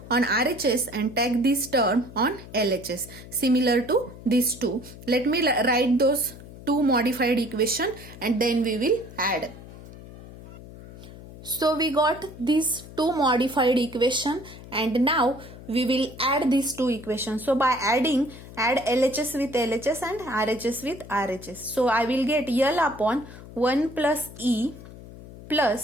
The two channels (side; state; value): left; noise; hum, 16 dB below the sound